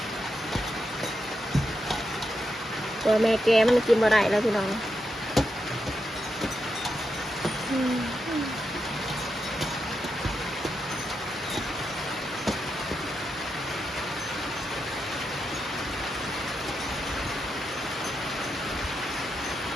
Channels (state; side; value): normal; both; correlation 0.85